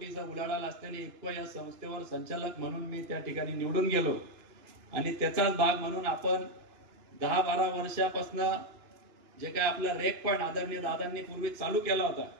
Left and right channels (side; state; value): left; late; 2.9 ms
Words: उलाढाल असलेली इफको या संस्थेवर संचालक म्हणून मी त्या ठिकाणी निवडून गेलो आणि त्याचाच भाग म्हणून आपण 10-12 वर्षापासून जे काय आपला रेक पॉइंट आदरणीय दादांनी पूर्वी चालू केला होता,